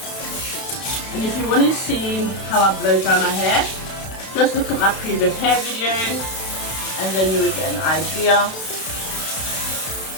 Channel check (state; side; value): late; right; 32 ms